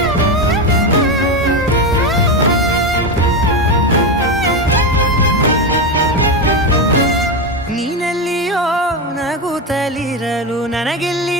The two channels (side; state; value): both; normal; correlation 0.13